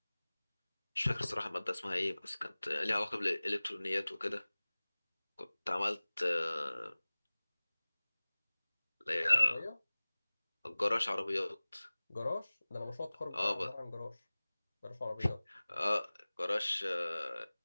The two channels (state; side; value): inverted; both; correlation -0.99